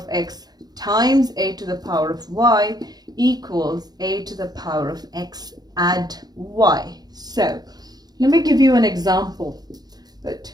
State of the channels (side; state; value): left; late; 0.19 ms